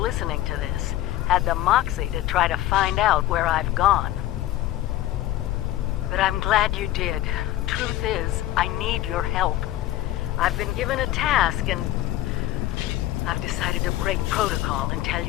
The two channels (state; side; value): quieter; right; 14.7 dB